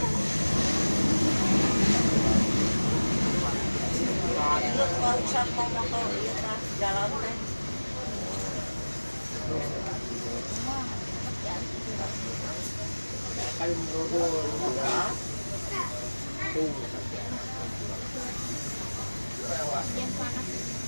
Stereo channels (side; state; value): both; inverted; correlation -1.00